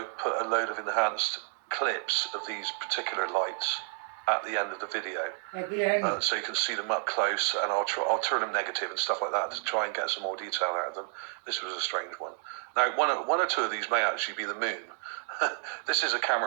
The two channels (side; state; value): left; silent; digital silence